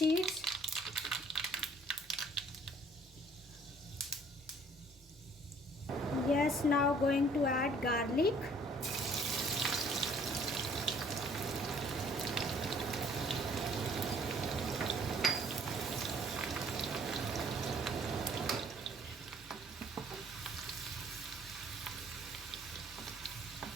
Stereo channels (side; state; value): both; normal; correlation 0.58